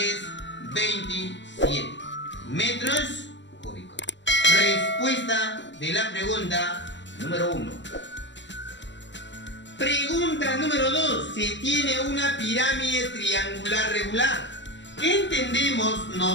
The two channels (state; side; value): late; right; 0.53 ms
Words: 27 metros cúbicos. Respuesta de la pregunta número 1. Pregunta número 2. Se tiene una pirámide triangular regular. ¿Qué entendemos